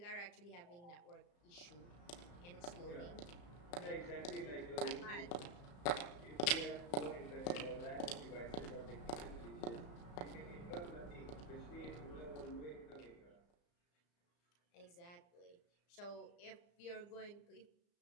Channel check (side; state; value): right; late; 34 ms